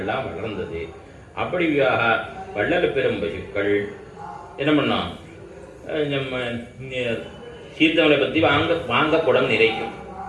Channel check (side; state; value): both; identical; correlation 1.00